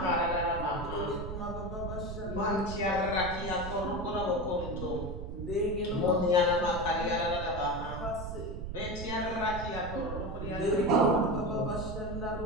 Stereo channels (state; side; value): noise; right; rumble, 7 dB below the sound